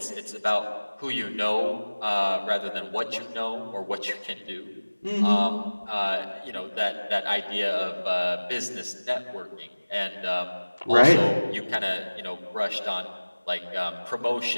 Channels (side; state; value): both; inverted; correlation -1.00